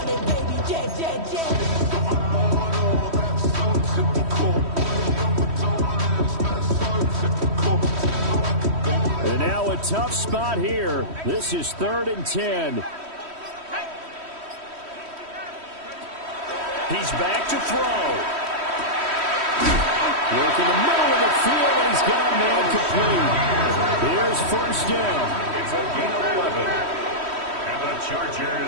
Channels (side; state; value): left; late; 3.1 ms